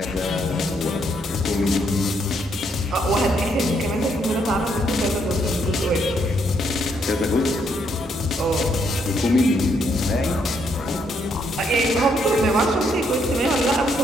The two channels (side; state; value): both; normal; correlation 0.74